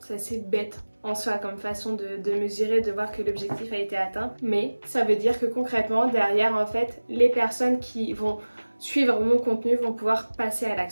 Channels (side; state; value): both; inverted; correlation -1.00